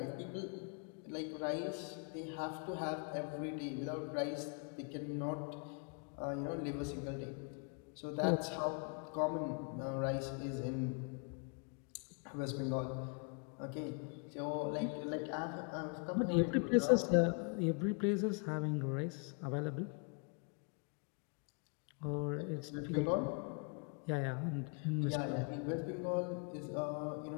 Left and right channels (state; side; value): quieter; right; 37.4 dB